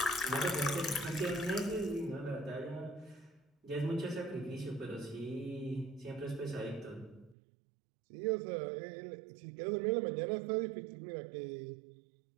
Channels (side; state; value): left; drops out; at 7.4 s